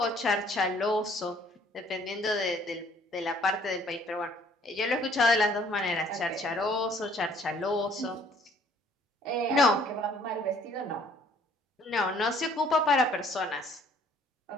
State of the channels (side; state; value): both; normal; correlation 0.59